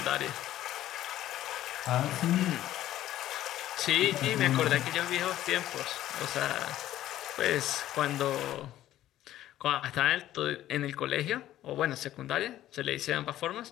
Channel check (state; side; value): quieter; right; 13.4 dB